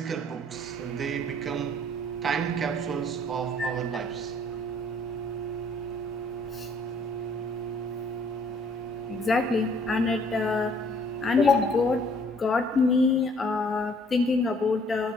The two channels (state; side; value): normal; both; correlation 0.60